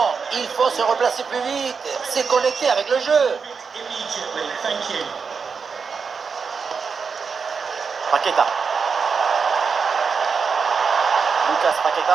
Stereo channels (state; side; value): quieter; left; 5.6 dB